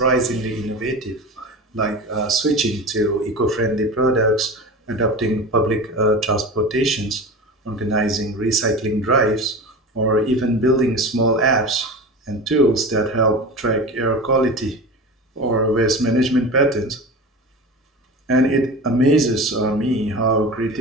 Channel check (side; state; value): both; normal; correlation 0.30